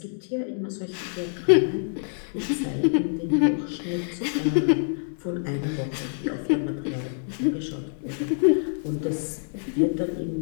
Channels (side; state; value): right; silent; digital silence